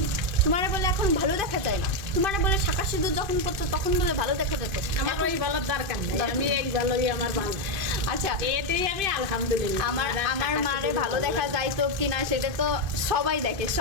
তোমারে বলে এখন ভালো দেখা যায় না, তোমারে বলে শাঁখা সিঁদুর যখন পড়তো তখন বলে ভালো দেখা যেত। আমার ওই ভালোর দরকার নেই, আমি এই ভালোই আমার ভালো। আচ্ছা এতেই আমি আলহামদুলিল্লাহ। আমার মারে ভালো দেখা যাইতো কিনা সেটা তো সবাই দেখে,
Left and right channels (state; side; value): late; left; 2.5 ms